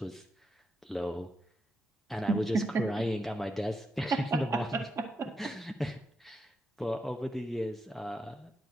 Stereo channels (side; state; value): both; normal; correlation 0.84